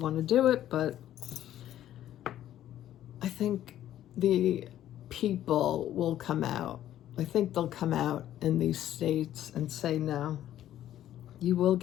to do it, but I think the people will come out. I think they'll come out in these states and say, no, you will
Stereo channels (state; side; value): quieter; right; 12.1 dB